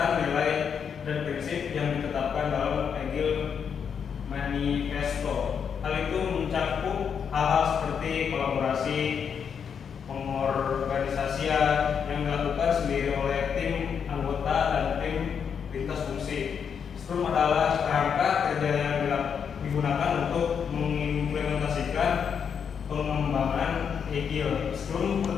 nilai dan prinsip yang ditetapkan dalam Agile Manifesto. Hal itu mencakup hal-hal seperti kolaborasi, pengorganisasian yang dilakukan sendiri oleh tim anggota dan tim lintas fungsi. Scrum adalah kerangka kerja yang digunakan untuk mengimplementasikan pengembangan Agile. Scrum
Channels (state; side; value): quieter; right; 7.1 dB